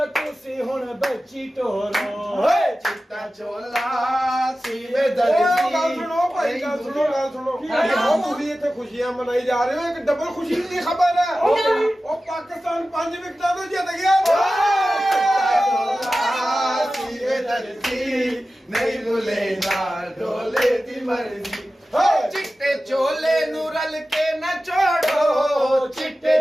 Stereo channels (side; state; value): both; normal; correlation 0.95